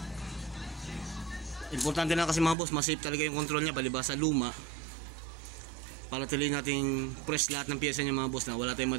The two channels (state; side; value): drops out; left; at 2.6 s